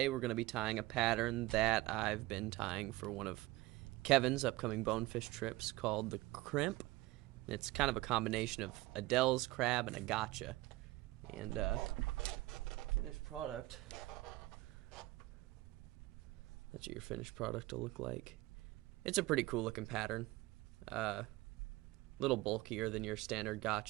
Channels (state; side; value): quieter; left; 19.4 dB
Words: we're going to be tying a pattern that I've been tying for one of Kevin's upcoming bonefish trips called the Crimp. It's kind of a combination of a Dell's crab and a gotcha. And finished product, that's what your finished product will look like. It's a pretty cool looking pattern. Little bulkier than your standard